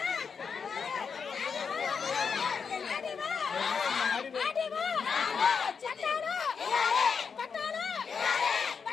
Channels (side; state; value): right; quieter; 6.0 dB